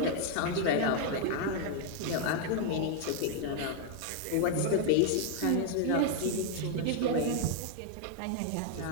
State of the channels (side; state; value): both; different; correlation 0.00